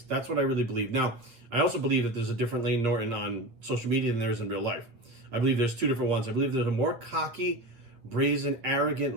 That's what I really believe. Now, I also believe that there's a different Layne Norton on social media than there is in real life. I believe there's two different ones. I believe there's a more cocky, brazen,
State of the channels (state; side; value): late; left; 8.8 ms